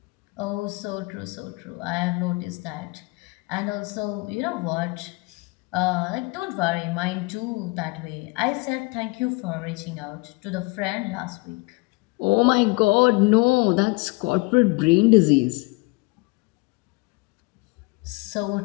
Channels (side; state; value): right; quieter; 26.4 dB